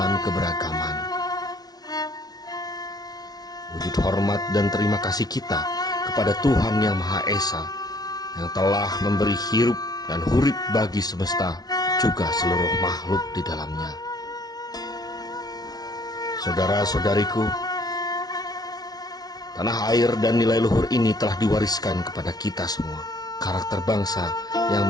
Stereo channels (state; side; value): late; right; 0.19 ms